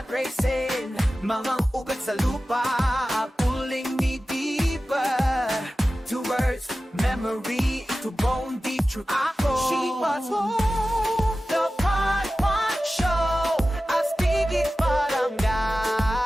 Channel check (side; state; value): both; normal; correlation 0.95